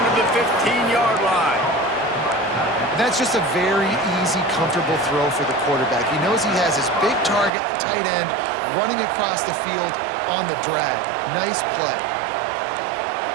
to the 15-yard line. That's just a very easy, comfortable throw for the quarterback. He knows he has his big target, tight end, running across the field on the drag. Nice play.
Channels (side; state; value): left; drops out; at 7.5 s